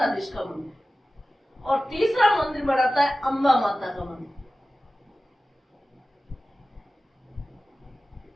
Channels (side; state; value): both; normal; correlation 0.95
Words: का मंदिर। और तीसरा मंदिर बनाता है अम्बा माता का मंदिर।